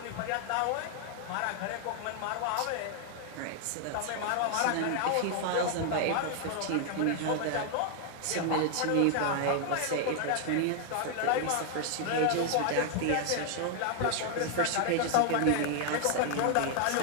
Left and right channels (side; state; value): both; different; correlation 0.00